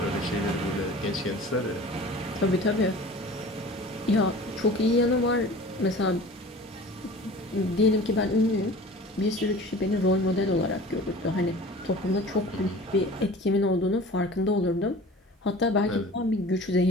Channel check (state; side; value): normal; both; correlation 0.41